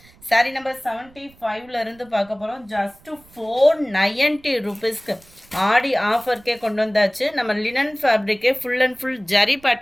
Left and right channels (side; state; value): right; noise; rumble, 27 dB below the sound